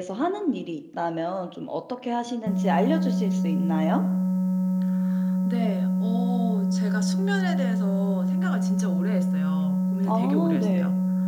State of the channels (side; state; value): both; identical; correlation 1.00